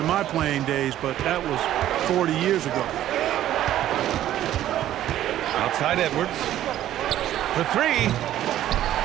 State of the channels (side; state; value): left; quieter; 12.6 dB